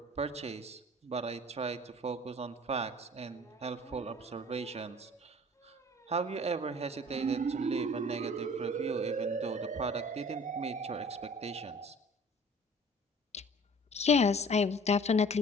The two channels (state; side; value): normal; both; correlation 0.48